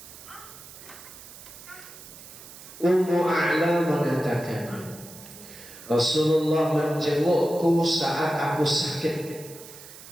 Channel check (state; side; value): noise; right; hiss, 17 dB below the sound